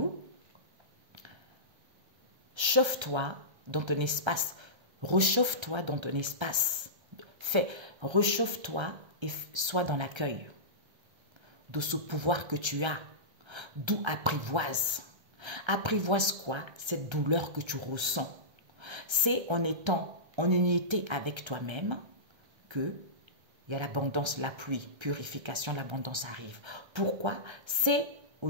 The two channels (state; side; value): late; left; 1.3 ms